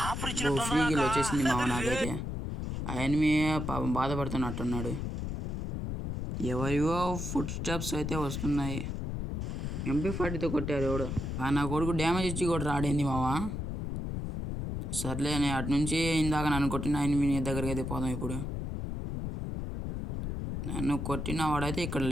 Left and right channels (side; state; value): left; noise; rumble, 4 dB below the sound